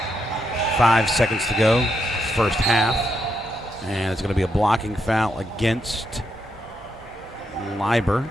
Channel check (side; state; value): both; normal; correlation 0.81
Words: 5 seconds to go. First half. And it's going to be a blocking foul against Leiber.